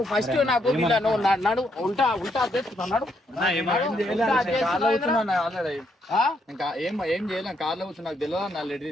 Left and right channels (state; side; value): normal; both; correlation 0.75